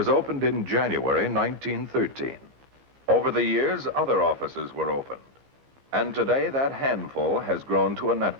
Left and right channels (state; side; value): late; left; 15 ms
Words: opened in January 1913. Over the years, other offices were opened. And today, that handful has grown to a